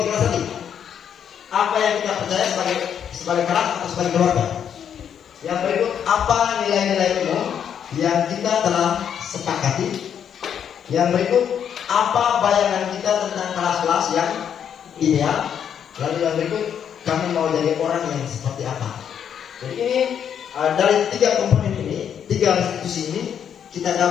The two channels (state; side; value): quieter; right; 8.5 dB